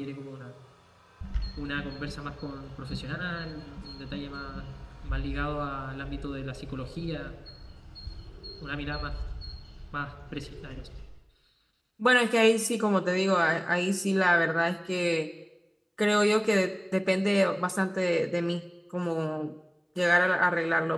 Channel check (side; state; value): both; identical; correlation 1.00